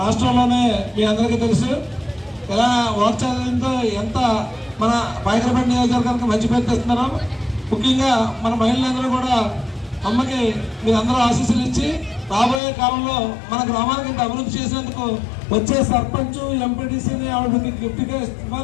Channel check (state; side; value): drops out; right; at 12.6 s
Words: రాష్ట్రంలోనే మీ అందరికీ తెలుసు ఎలా వాక్చాలంతో ఎంత మన బైకరపేట నియోజకవర్గానికి మంచి పేరు తెస్తున్నారో. ముఖ్యంగా మన మహిళలందరూ కూడా అమ్మకి మీరందరూ ఆశీస్సులు ఇచ్చి రాబోయే కాలంలో మన గ్రామానికి ఇంత అభివృద్ధి చేసేందుకు వచ్చే సర్పంచ్ ఎంపీటీసీని ఆవిడకి గిఫ్ట్గా